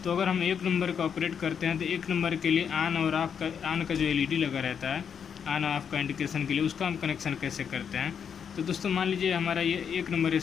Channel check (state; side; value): quieter; right; 7.4 dB